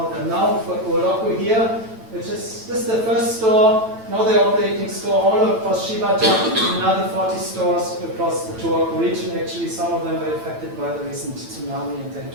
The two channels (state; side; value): late; left; 9.1 ms